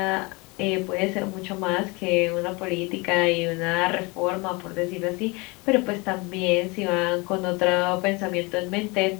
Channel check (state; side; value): quieter; right; 26.9 dB